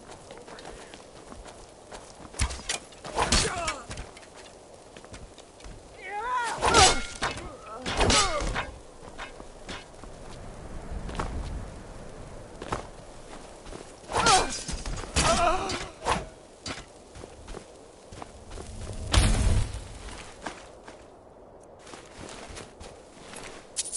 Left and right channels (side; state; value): both; identical; correlation 1.00